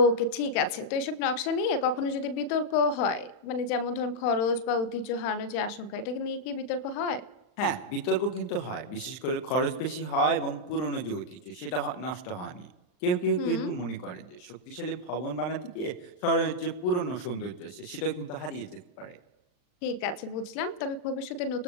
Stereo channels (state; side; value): late; right; 39 ms